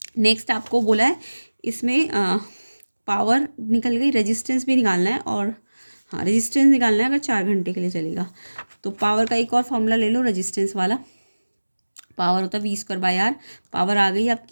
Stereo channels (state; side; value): inverted; both; correlation -1.00